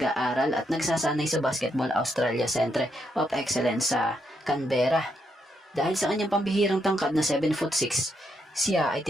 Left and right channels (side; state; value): both; normal; correlation 0.78